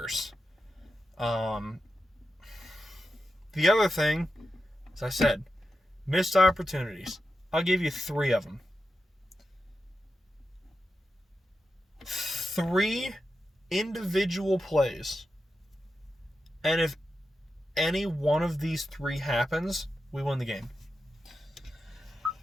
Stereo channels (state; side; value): normal; both; correlation 0.89